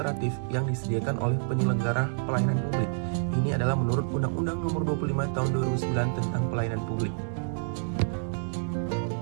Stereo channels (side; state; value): left; silent; digital silence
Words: yang disediakan oleh penyelenggara pelayanan publik. Ini adalah menurut Undang-Undang Nomor 25 Tahun 2009 tentang Pelayanan Publik.